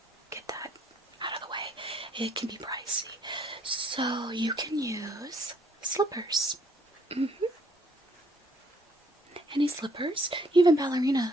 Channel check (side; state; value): both; normal; correlation 0.65